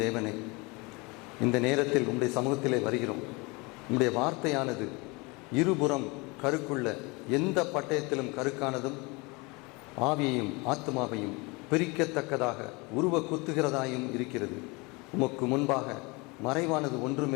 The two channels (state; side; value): quieter; right; 26.8 dB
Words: தேவனே, இந்த நேரத்தில் உம்முடைய சமூகத்திலே வருகிறோம். உம்முடைய வார்த்தையானது இருபுறம் கருக்குள்ள எந்த பட்டயத்திலும் கருக்கானதும் ஆவியையும் ஆத்மாவையும் பிரிக்கத்தக்கதாக உருவ குத்துகிறதாயும் இருக்கிறது. உமக்கு முன்பாக மறைவானது